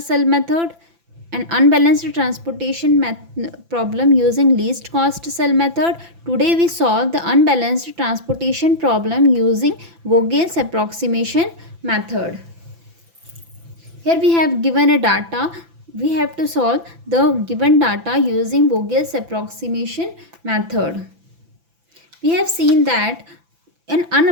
cell method and unbalanced transportation problem using least cost cell method. Today we solve the unbalanced transportation problem using Vogel's approximation method. Here we have given a data. We have to solve the given data using Vogel's approximation method. We have seen that in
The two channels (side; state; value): left; late; 5.9 ms